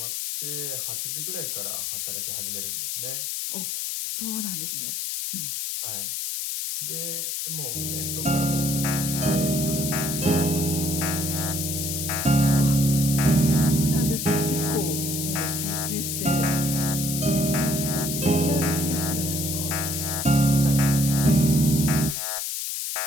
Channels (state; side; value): noise; left; hiss, 3 dB below the sound